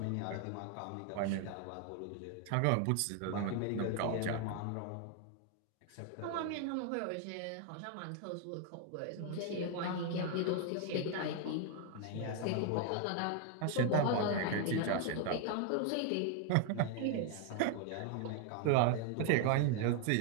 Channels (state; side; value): different; both; correlation 0.00